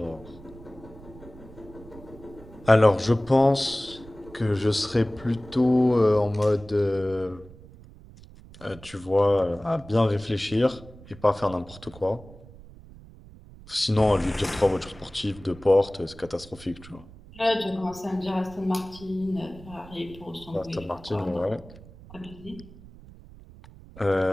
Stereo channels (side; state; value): right; noise; rumble, 20 dB below the sound